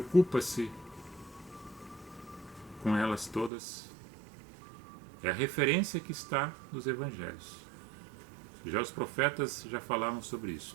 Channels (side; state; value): left; drops out; at 3.5 s